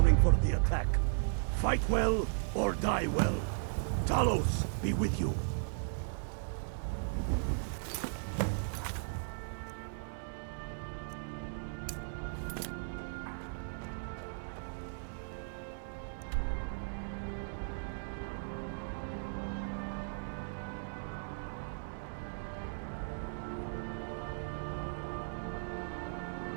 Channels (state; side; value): silent; left; digital silence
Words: for the attack. Fight well or die well. Talos be with you.